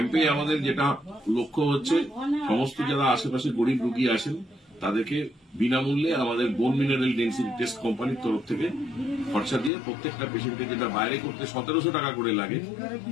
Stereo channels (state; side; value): drops out; right; at 9.7 s